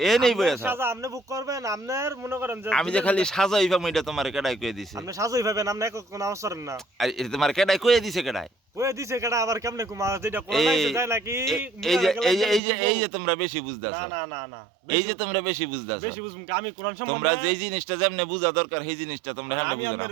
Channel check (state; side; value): drops out; left; at 12.6 s